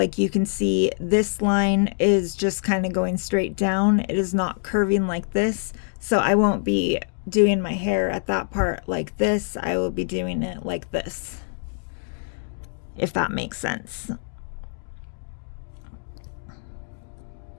you can see, this line is just kind of going straight down. It is not curving like this. So I won't be doing my hair at that part like this. I will be doing it like this, if that makes sense.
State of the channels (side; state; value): right; silent; digital silence